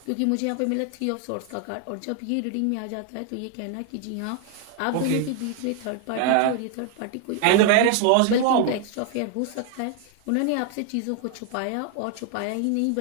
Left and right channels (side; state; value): both; different; correlation 0.00